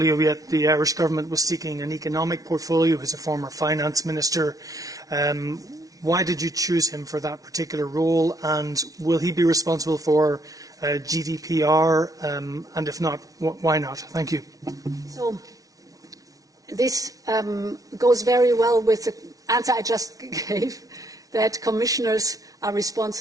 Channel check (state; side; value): late; left; 0.18 ms